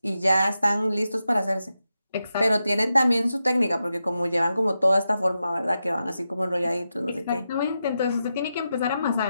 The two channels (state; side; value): inverted; both; correlation -0.89